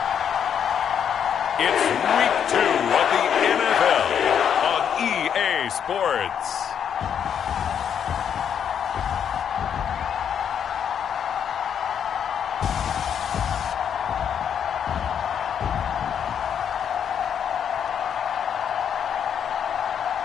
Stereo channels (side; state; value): right; quieter; 8.2 dB